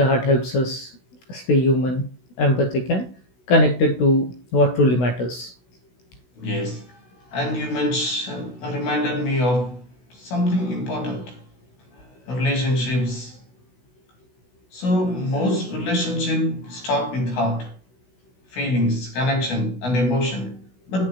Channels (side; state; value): right; late; 16 ms